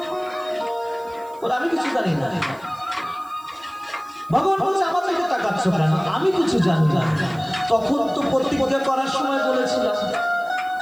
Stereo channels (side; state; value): right; noise; hiss, 26 dB below the sound